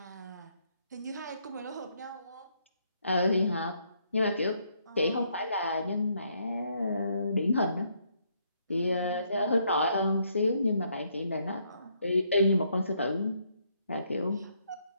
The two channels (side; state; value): both; inverted; correlation -0.72